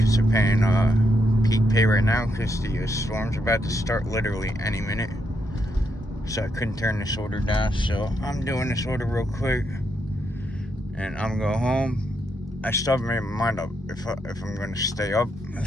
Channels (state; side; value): normal; both; correlation 0.79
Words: they're paying peak pay right now because the storm's about to start literally any minute. So I couldn't turn this order down. So I'm doing this order real quick. And I'm going to go home. I still haven't made my mind up if I'm going to stay up